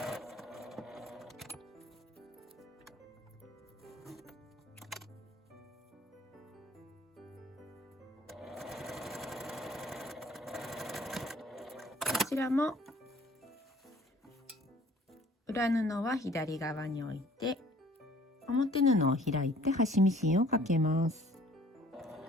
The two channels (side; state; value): both; normal; correlation 0.54